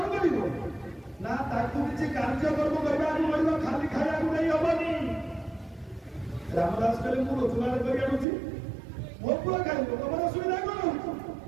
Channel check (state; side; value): drops out; left; at 8.2 s